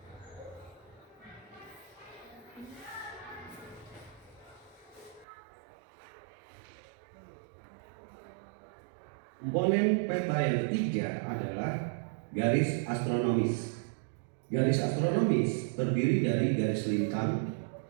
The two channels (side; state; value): left; drops out; at 5.2 s